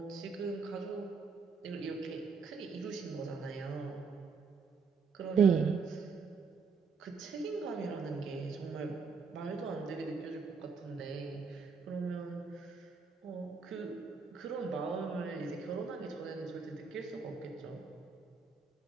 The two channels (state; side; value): quieter; left; 5.2 dB